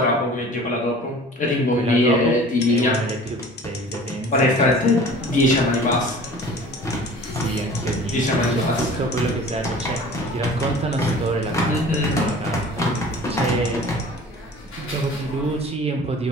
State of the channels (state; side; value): normal; both; correlation 0.44